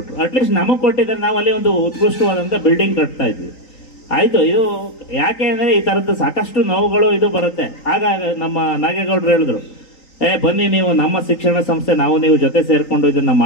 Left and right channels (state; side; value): late; right; 3.9 ms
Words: ಅಟ್ಲೀಸ್ಟ್ ನಮಗೆ ಕೊಟ್ಟಿದ್ರೆ ನಾವು ಅಲ್ಲಿ ಒಂದು ಉತ್ಕೃಷ್ಟವಾದಂಥ ಬಿಲ್ಡಿಂಗ್ ಕಟ್ತಾ ಇದ್ವಿ. ಆಯಿತು, ಇದು ಯಾಕೆ ಅಂದರೆ ಈ ಥರದ್ದು ಸಾಕಷ್ಟು ನೋವುಗಳು ಇದು ಬರುತ್ತೆ. ಆಗ ನಮ್ಮ ನಾಗೇಗೌಡರು ಹೇಳಿದ್ರು, ಬನ್ನಿ ನೀವು ನಮ್ಮ ಶಿಕ್ಷಣ ಸಂಸ್ಥೆ, ನಾವು ನೀವು ಜೊತೆ ಸೇರಿಕೊಂಡು ಇದನ್ನು